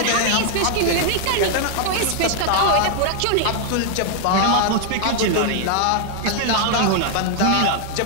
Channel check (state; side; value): different; both; correlation 0.00